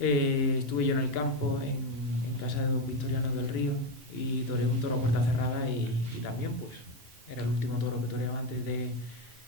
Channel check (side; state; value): both; normal; correlation 0.10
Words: yo en el campo, en casa de don Victoriano del Río, y toreé un toro a puerta cerrada y también pues era el último toro que toreaba antes